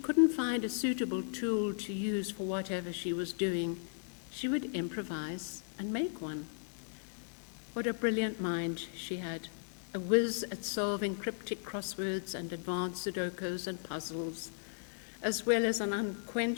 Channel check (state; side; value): silent; right; digital silence